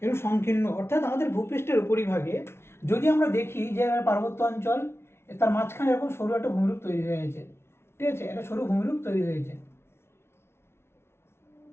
এরকম সংকীর্ণ, অর্থাৎ আমাদের ভূপৃষ্ঠের উপরিভাগে যদি আমরা দেখি যে পার্বত্য অঞ্চল, তার মাঝখানে এরকম সরু একটা ভূমিরূপ তৈরি হয়ে গেছে, ঠিক আছে, একটা সরু ভূমিরূপ তৈরি হয়েছে।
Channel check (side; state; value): right; late; 0.12 ms